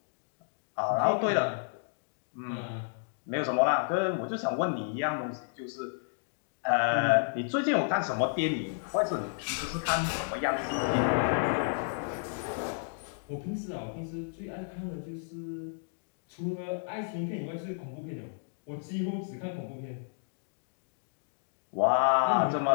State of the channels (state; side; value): silent; right; digital silence